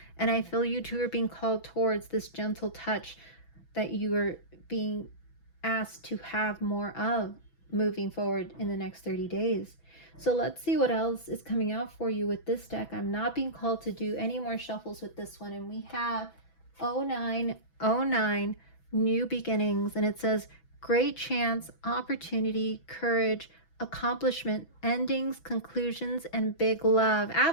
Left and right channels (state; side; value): late; right; 6.1 ms